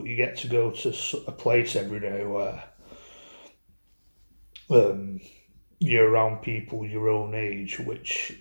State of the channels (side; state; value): both; inverted; correlation -1.00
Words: you get to go to a place every day where um, you're around people your own age, which